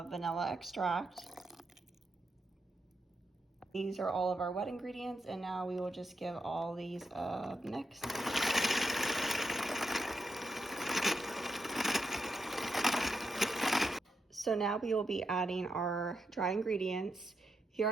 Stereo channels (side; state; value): both; normal; correlation 0.83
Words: vanilla extract. These are all of our wet ingredients, and now we will just give all these a mix. So now we will be adding our dry ingredients. Here